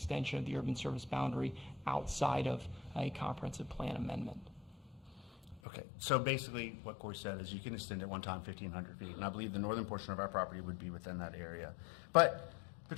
of the urban service boundary outside of a comprehensive plan amendment. Okay, so basically what Corey said is you can extend it one time 1,500 feet, and I believe the northern portion of our property would be within that area. But the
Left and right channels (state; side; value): drops out; right; at 5.6 s